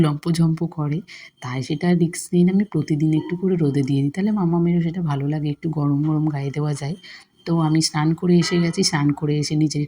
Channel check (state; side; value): identical; both; correlation 1.00